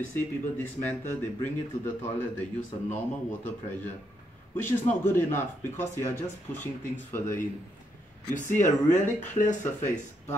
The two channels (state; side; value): normal; both; correlation 0.77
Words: see people dismantle, they bring it to the toilet, they use a normal water pressure, which is not good enough because you are just pushing things further in. You see a really clear surface,